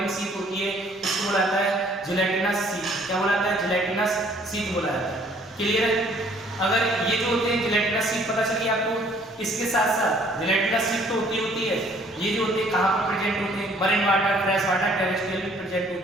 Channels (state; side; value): normal; both; correlation 0.60